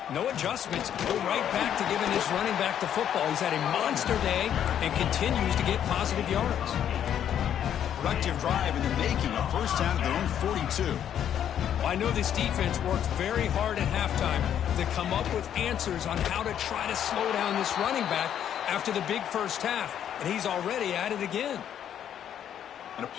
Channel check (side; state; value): right; quieter; 9.7 dB